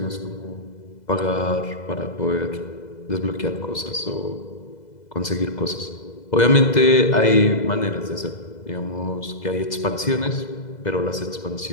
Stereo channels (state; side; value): late; right; 2.0 ms